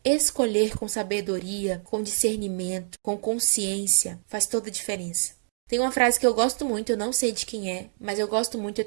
escolher com sabedoria, com discernimento, com consciência, faz toda a diferença. Tem uma frase que eu gosto muito, eu não sei de quem é, mas eu gosto muito, eu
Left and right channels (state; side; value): silent; left; digital silence